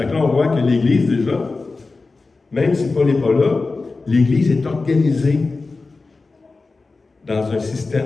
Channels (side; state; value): right; quieter; 3.8 dB